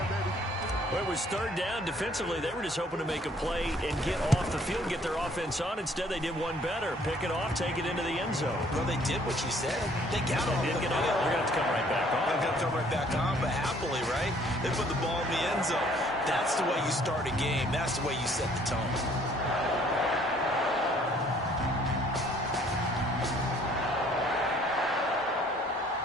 Well, it was 3rd down. Defensively, they were just hoping to make a play and get off the field, get their offense on. Instead, they did one better. Pick it off, take it into the end zone. Well, they did what you said. They got off the field. They're going to have to come right back on. They're going to come right back on, but happily, right? They put the ball in the end zone. That's the way you start a game. That's the way you set the tone.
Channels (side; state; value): both; normal; correlation 0.60